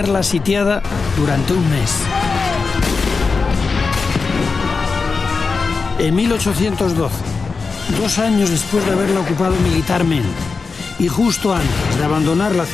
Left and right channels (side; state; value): right; quieter; 4.6 dB